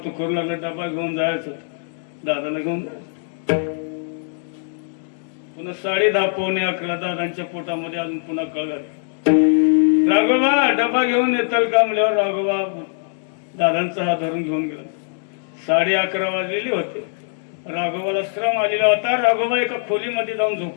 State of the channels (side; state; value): right; silent; digital silence